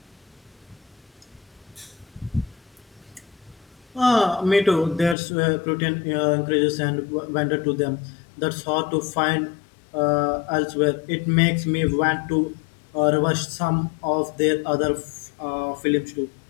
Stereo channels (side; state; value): right; drops out; at 5.2 s